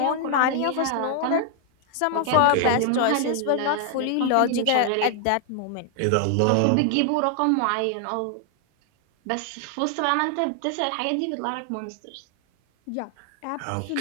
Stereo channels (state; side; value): different; both; correlation 0.00